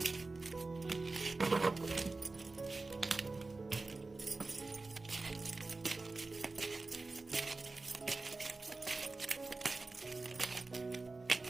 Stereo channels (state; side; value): quieter; left; 3.5 dB